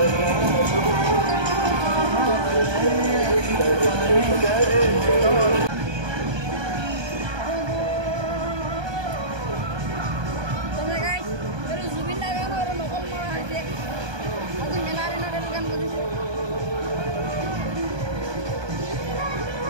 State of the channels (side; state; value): left; late; 1.2 ms